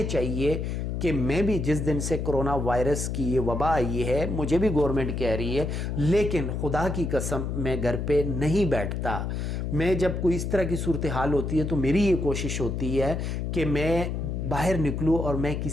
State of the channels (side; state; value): left; noise; hum, 2 dB below the sound